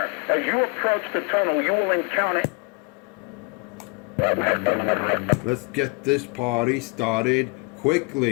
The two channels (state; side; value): quieter; right; 30.9 dB